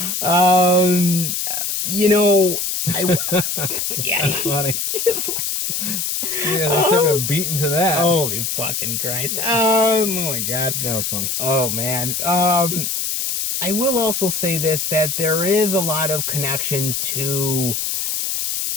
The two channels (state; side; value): noise; left; hiss, 1 dB below the sound